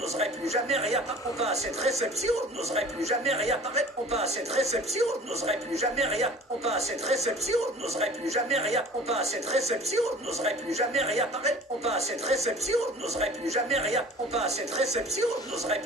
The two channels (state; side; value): normal; both; correlation 0.45